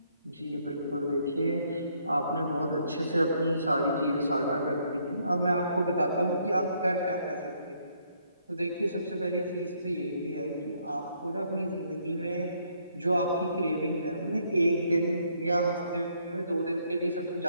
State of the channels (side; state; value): both; inverted; correlation -0.69